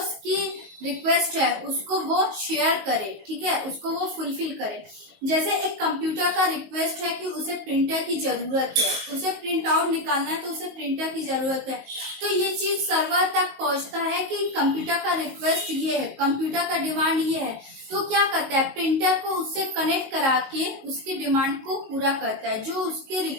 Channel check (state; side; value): late; left; 19 ms